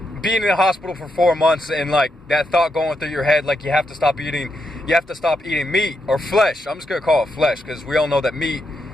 being in the hospital for 4 months, and like that thought going through your head, like you have to stop eating meat or flesh. I'm just gonna call it flesh, because we all know that meat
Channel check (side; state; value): both; normal; correlation 0.82